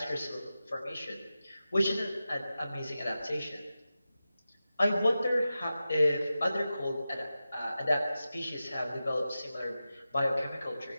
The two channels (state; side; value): inverted; both; correlation -0.93